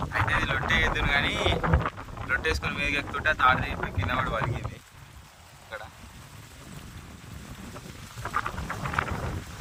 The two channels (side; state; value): both; identical; correlation 1.00